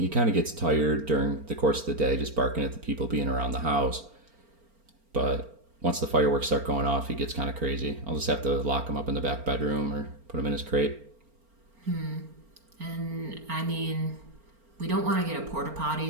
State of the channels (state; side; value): late; left; 4.4 ms